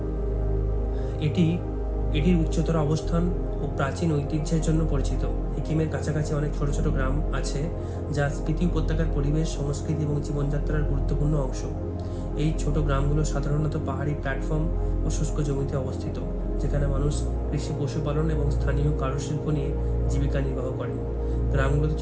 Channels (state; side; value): identical; both; correlation 1.00